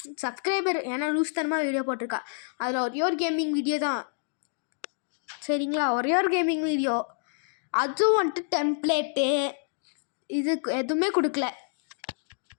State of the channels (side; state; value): right; silent; digital silence